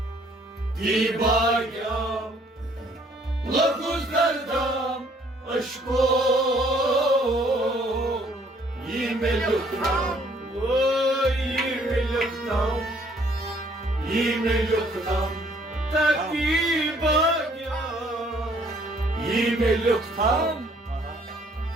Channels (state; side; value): normal; both; correlation 0.62